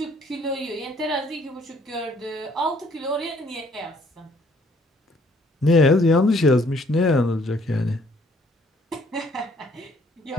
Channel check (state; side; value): normal; both; correlation 0.63